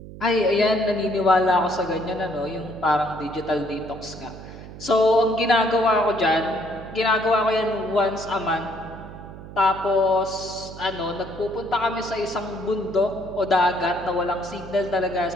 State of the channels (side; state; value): right; noise; hum, 14 dB below the sound